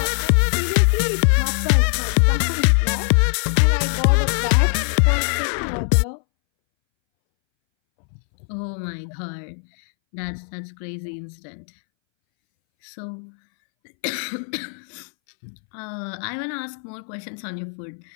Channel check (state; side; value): silent; right; 63 dB below the other